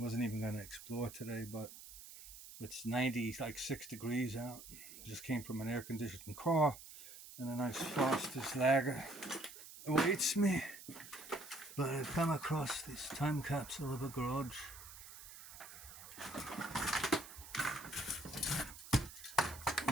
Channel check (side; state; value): right; noise; hiss, 15 dB below the sound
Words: even going to explore today, but it's 96 degrees out. Just came from an air-conditioned car, and a nice Foster's Lager awaits me. But I've come across this time capsule of a garage.